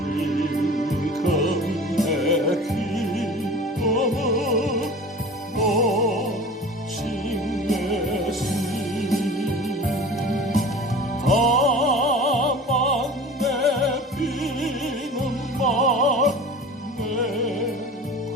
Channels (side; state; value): both; normal; correlation 0.38